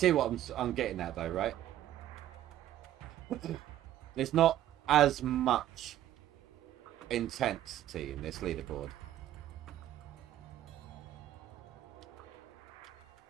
what I'm getting at, though, right? There's not as much intensity in this leaderboard.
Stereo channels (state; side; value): quieter; left; 12.6 dB